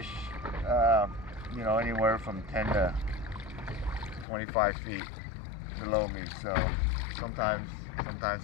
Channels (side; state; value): right; drops out; at 4.2 s